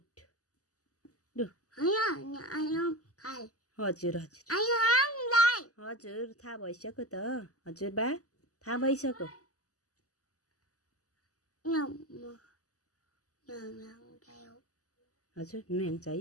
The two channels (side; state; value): right; late; 0.66 ms